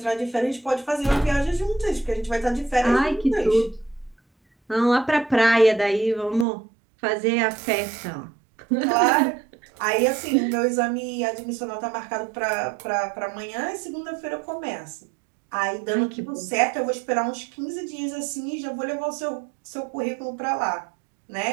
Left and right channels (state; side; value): drops out; left; at 6.5 s